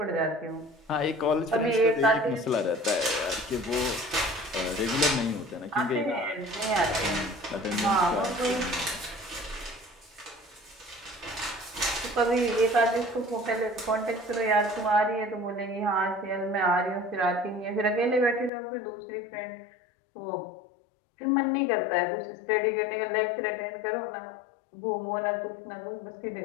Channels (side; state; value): right; drops out; at 18.5 s